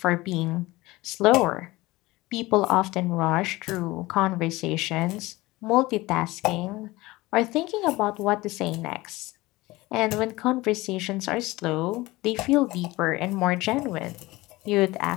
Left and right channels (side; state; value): right; quieter; 20.2 dB